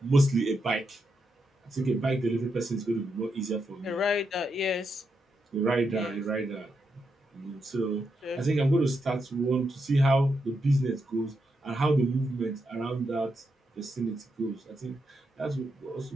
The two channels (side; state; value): both; normal; correlation 0.83